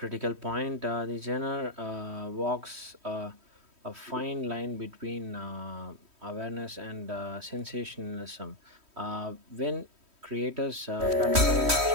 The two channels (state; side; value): late; left; 3.1 ms